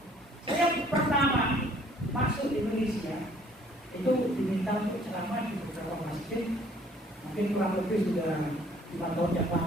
Saya pertama masuk di Malaysia itu diminta untuk ceramah di beberapa masjid, mungkin kurang lebih sudah 5 tahun yang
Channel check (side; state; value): both; normal; correlation 0.58